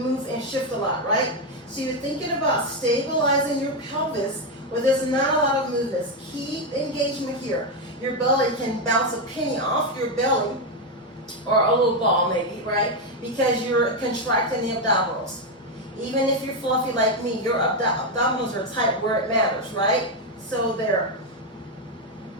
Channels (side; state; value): both; normal; correlation 0.06